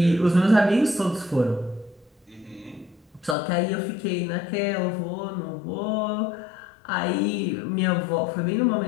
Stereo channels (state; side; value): drops out; right; at 3.4 s